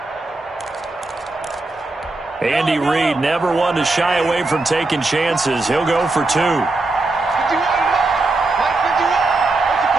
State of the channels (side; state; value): left; quieter; 3.2 dB